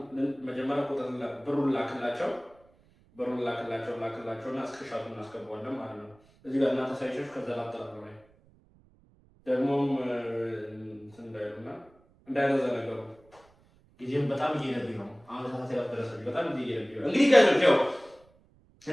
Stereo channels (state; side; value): noise; right; rumble, 30 dB below the sound